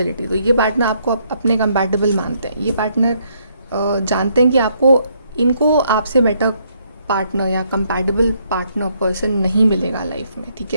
तो ये पार्टनर आपको अपने कंपैटिबल मानते हैं। ये पार्टनर जानते हैं कि इनको आपसे बेटर पार्टनर या कंपैटिबल पार्टनर पर्सन नहीं मिलेगा लाइफ में, ठीक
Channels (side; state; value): both; inverted; correlation -0.71